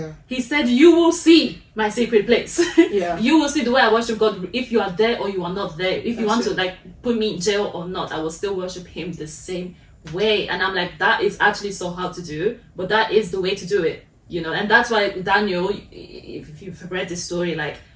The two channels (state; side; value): identical; both; correlation 1.00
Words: He said, you will see my secret place. Yeah. You will see the way I worship God, if you are there or you are not there. If you want to like put me in jail or not, I will still worship him the same way. And I'm like, that is actually so hard to do, but that is the way to do it. You know, and that's why Daniel, if you've read this story, like